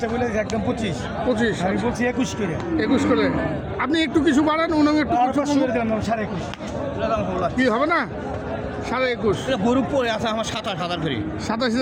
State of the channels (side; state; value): both; identical; correlation 1.00